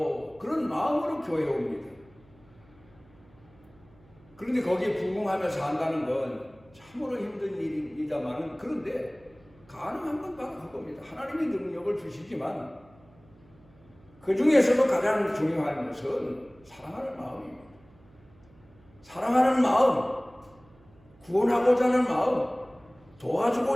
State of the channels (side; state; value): right; noise; hum, 28 dB below the sound